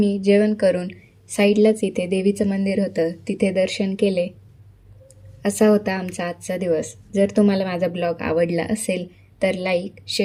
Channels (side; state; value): both; identical; correlation 1.00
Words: जेवण करून साईडलाच इथे देवीचं मंदिर होतं, तिथे दर्शन केले. असा होता आमचा आजचा दिवस. जर तुम्हाला माझा ब्लॉग आवडला असेल तर लाईक,